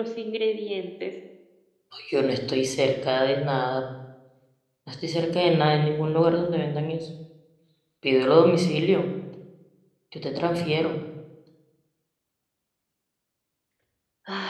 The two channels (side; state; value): both; identical; correlation 1.00